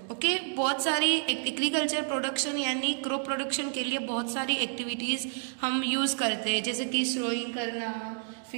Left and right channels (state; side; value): silent; left; 58 dB below the other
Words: Okay, बहुत सारी एग्रीकल्चर प्रोडक्शन यानी क्रॉप प्रोडक्शन के लिए बहुत सारी एक्टिविटीज हम यूज करते हैं, जैसे कि सोइंग करना,